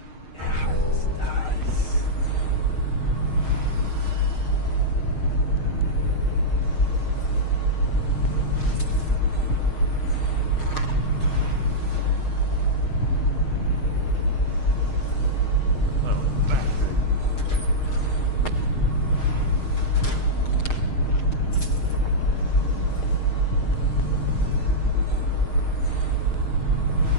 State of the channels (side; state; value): right; late; 6.5 ms